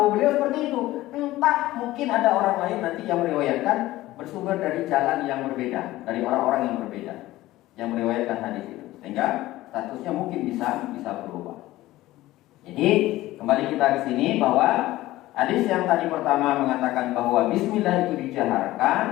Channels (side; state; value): right; quieter; 16.7 dB